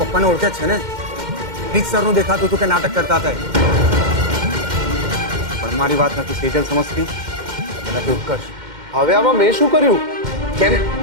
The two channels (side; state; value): left; late; 2.1 ms